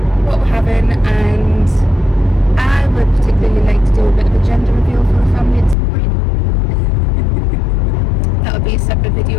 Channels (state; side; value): drops out; right; at 5.8 s